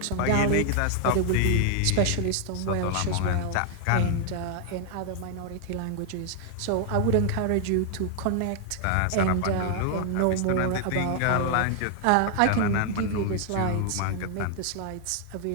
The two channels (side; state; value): both; different; correlation 0.00